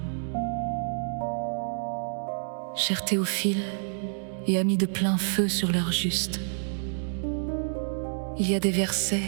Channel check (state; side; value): silent; left; digital silence